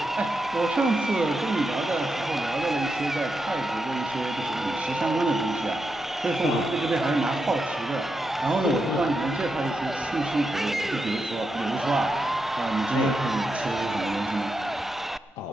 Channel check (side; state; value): both; normal; correlation 0.86